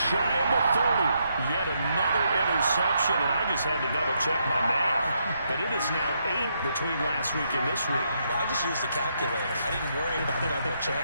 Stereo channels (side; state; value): both; inverted; correlation -0.78